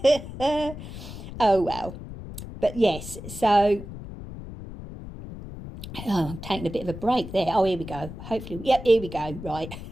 eh? Oh well. But yes, so I'm taking a bit of a break there. Oh, here we go. Hopefully, yep, here we go. Right.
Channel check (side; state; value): left; noise; rumble, 11 dB below the sound